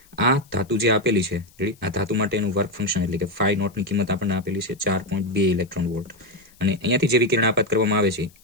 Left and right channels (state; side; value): noise; left; hiss, 29 dB below the sound